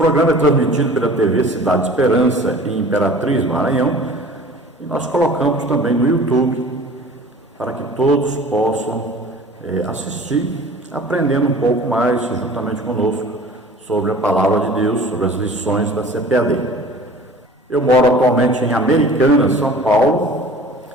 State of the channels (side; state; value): both; normal; correlation 0.44